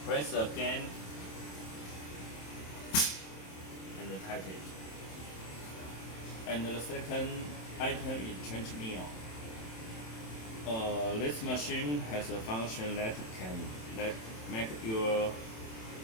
press again and tighten it. And the second item is change meal. This machine has a function that can make your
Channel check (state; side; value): late; right; 27 ms